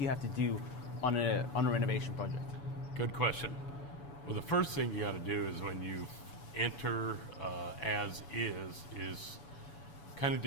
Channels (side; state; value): right; late; 7.0 ms